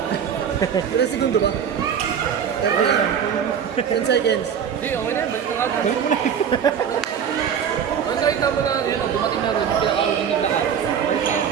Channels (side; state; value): left; quieter; 8.0 dB